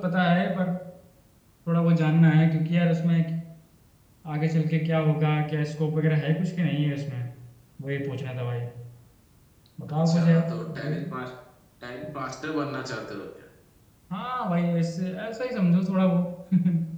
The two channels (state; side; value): identical; both; correlation 1.00